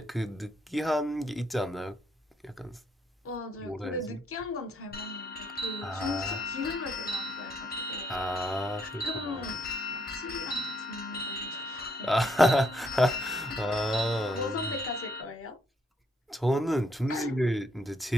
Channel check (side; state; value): both; normal; correlation 0.72